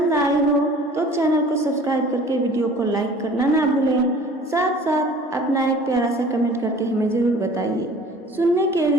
आई हो तो चैनल को सब्सक्राइब करके वीडियो को लाइक करना ना भूलें। साथ साथ अपना एक प्यारा सा कमेंट करके हमें ज़रूर बताइए। सुनने के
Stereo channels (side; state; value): both; normal; correlation 0.47